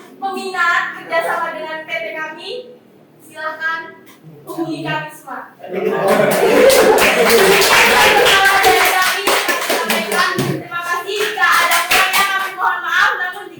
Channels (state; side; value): identical; both; correlation 1.00